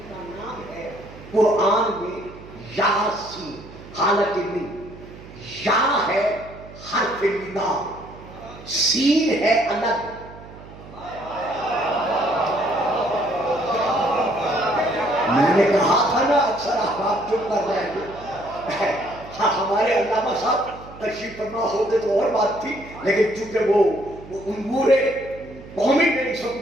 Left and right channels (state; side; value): noise; right; hum, 18 dB below the sound